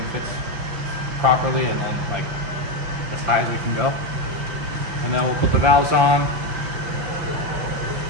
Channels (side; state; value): left; late; 5.9 ms